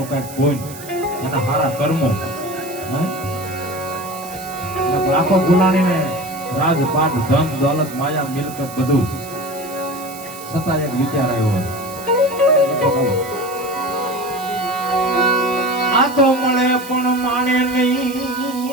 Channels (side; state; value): right; noise; hiss, 15 dB below the sound